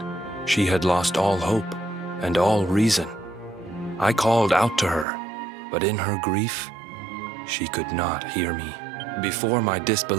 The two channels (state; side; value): drops out; left; at 5.1 s